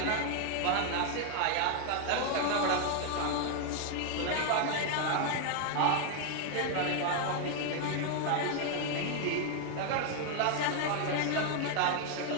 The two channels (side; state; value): both; different; correlation 0.00